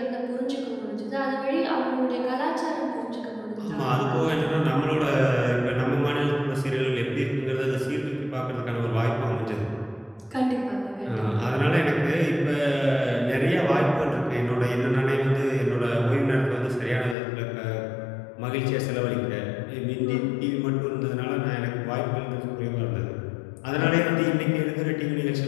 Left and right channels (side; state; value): right; drops out; at 17.2 s